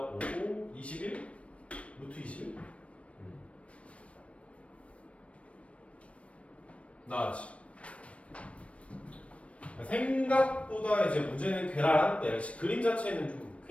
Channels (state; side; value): late; right; 0.063 ms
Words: 오고 21? 루트 21? 나왔지. 생각보다 이제 문제는 괴랄한데, 역시 그림 자체는 좀